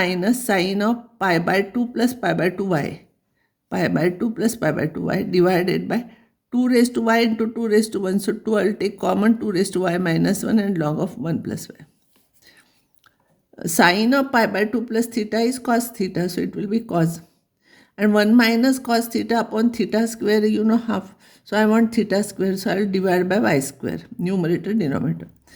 sine of pi by 2 plus pi by 2y. Pi by 2 plus pi by 2y divided by 2 raised to y into 2 raised to 1. So 2 I will take common, 2 raised to y minus 1 and log of 1 plus y. Sine of pi by 2 plus theta is cos theta. So it will be cos. And 1 minus cos theta upon theta square, you know, half. So I want theta square. So I will divide by y square. Numerator, denominator.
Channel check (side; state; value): both; identical; correlation 1.00